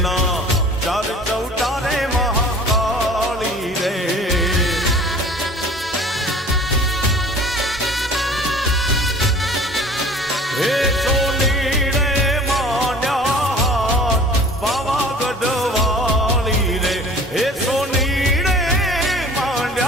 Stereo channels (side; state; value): both; normal; correlation 0.46